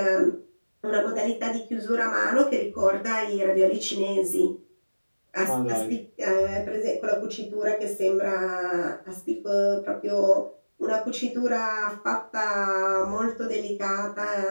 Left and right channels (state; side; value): inverted; both; correlation -1.00